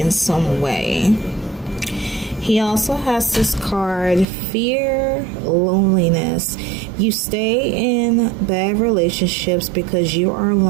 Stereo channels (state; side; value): drops out; left; at 4.2 s